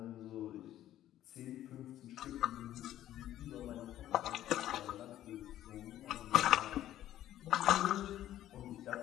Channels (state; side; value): quieter; right; 12.8 dB